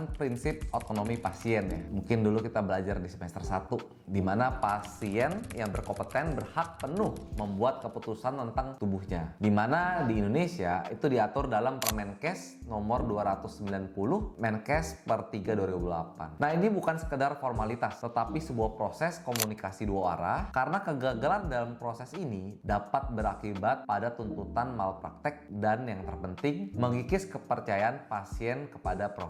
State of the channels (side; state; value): both; identical; correlation 1.00